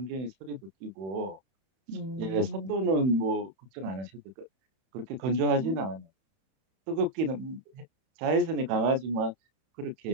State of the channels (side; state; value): left; late; 31 ms